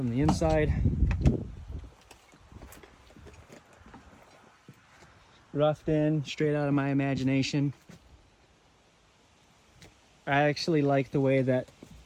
the inside. Roughed in, straight out of my imagination. I actually like the way that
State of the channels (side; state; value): both; identical; correlation 1.00